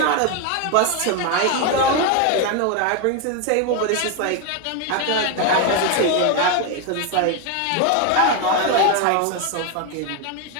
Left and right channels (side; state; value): both; different; correlation 0.01